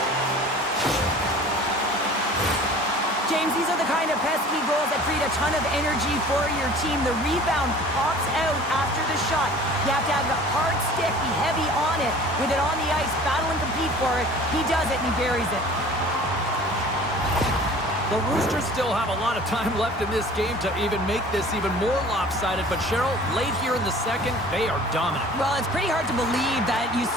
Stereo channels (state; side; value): normal; both; correlation 0.46